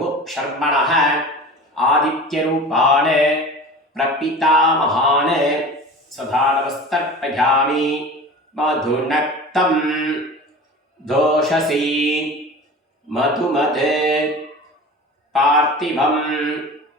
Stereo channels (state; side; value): normal; both; correlation 0.36